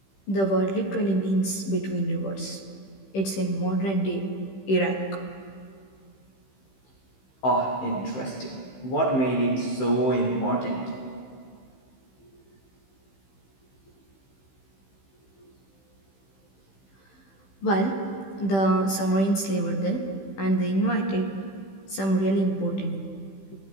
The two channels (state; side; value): late; right; 15 ms